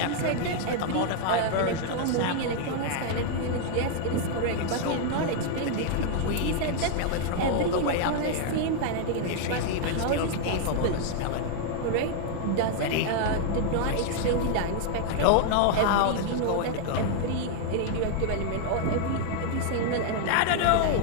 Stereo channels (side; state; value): both; different; correlation 0.00